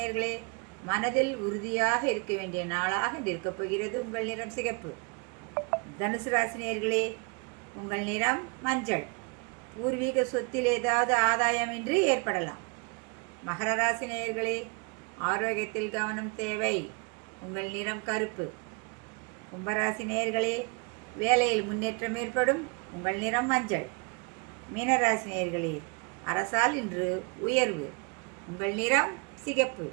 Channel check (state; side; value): quieter; left; 32.5 dB